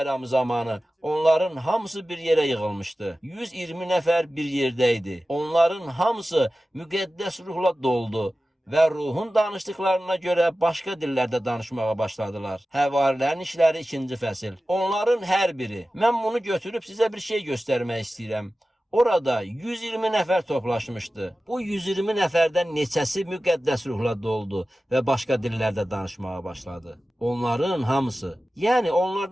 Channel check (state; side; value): normal; both; correlation 0.95